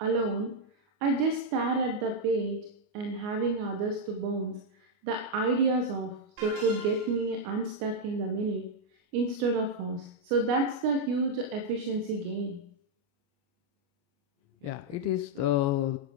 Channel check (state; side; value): late; left; 29 ms